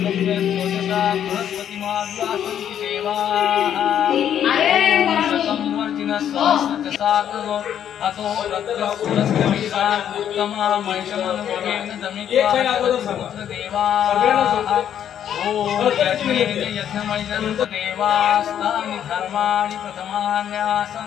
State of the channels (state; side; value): quieter; right; 9.7 dB